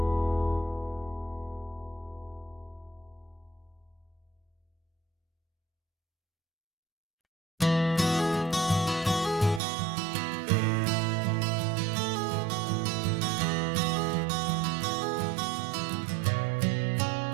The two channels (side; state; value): left; drops out; at 9.6 s